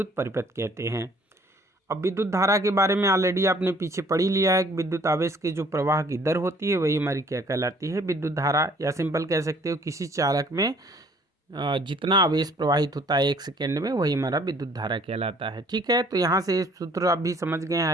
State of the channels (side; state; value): both; normal; correlation 0.58